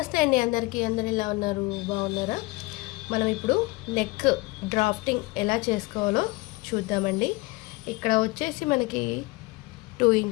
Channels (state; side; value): quieter; right; 23.3 dB